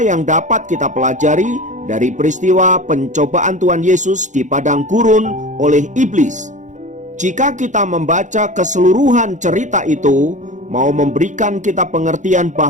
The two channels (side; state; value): left; late; 0.36 ms